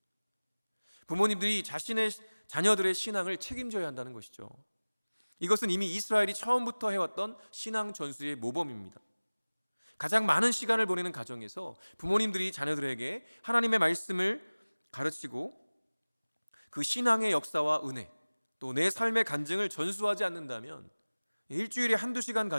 부모님들이 자신의 자녀들의 신앙을 책임져야 한다는 것이죠. 이것은 이미 이스라엘이 처음부터 해왔던 신앙 전수의 모범입니다. 가장 많은 시간을 보내는 가정에서 부모님들이 자녀들에게 하나님의 말씀을 가르치고 그 신앙의 역사와 은혜, 또 내 삶의 간증을 전수하지 않는다면 일주일에 한두 시간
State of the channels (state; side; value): inverted; both; correlation -1.00